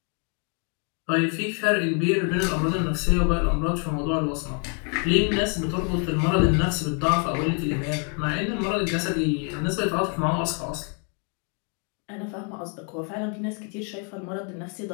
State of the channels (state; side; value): quieter; right; 38.3 dB